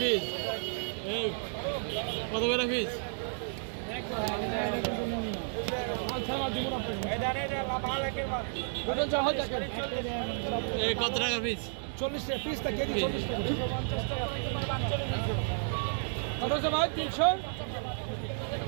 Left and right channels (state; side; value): silent; left; 56 dB below the other